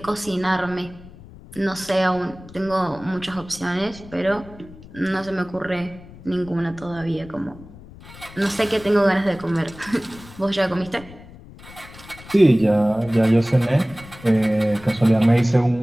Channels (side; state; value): left; noise; rumble, 19 dB below the sound